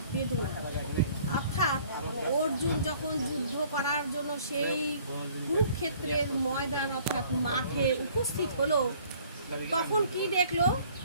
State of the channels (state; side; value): inverted; both; correlation -0.56